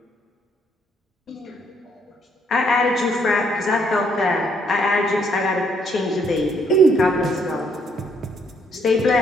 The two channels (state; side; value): normal; both; correlation 0.70